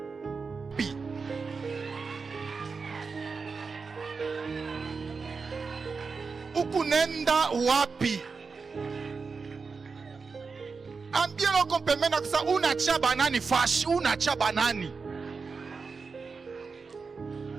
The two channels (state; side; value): quieter; left; 4.8 dB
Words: wapi? Ukunenda wapi? Ambia loko pembeni kisa unacha banani fashi, unacha banani.